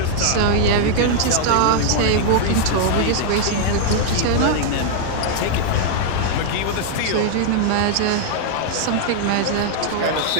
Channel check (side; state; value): both; different; correlation 0.00